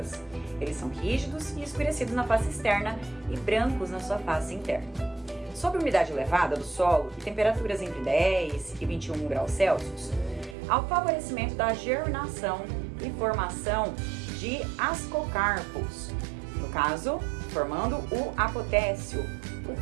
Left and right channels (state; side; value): drops out; left; at 10.6 s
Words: Eles são rígidos e escurecidos na face externa e brancos na sua face interna. Sob umidade elevada do solo e temperaturas entre 10 e 21 graus Celsius, há o favorecimento da germinação e formação de ascocarpos, no caso, formando o apotécio,